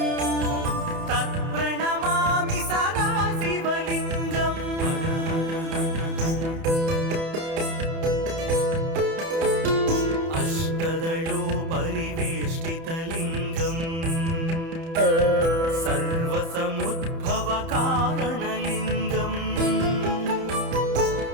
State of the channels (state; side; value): late; left; 30 ms